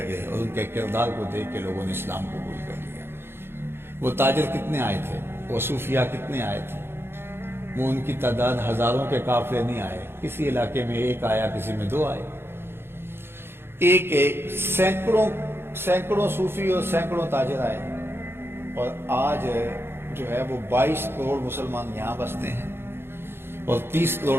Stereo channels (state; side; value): late; left; 0.11 ms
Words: اور ان کے کردار کو دیکھ کے لوگوں نے اسلام قبول کر لیا۔ وہ تاجر کتنے آئے تھے، وہ صوفیہ کتنے آئے تھے، وہ ان کی تعداد ہزاروں کے قافلے نہیں آئے، کسی علاقے میں ایک آیا، کسی میں 2 آئے، ایک سینکڑوں صوفی اور سینکڑوں تاجر آئے، اور آج جو ہے وہ 22 کروڑ مسلمان یہاں بستے ہیں اور 30 کروڑ